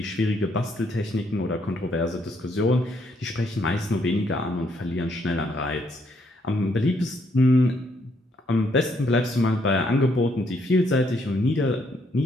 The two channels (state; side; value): normal; both; correlation 0.72